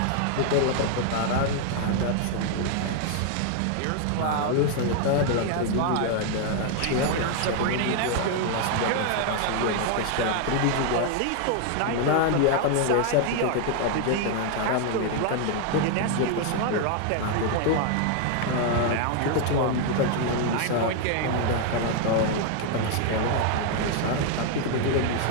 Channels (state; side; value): different; both; correlation 0.00